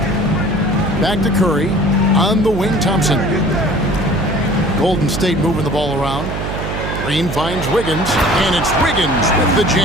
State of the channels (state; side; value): noise; right; hum, 5 dB below the sound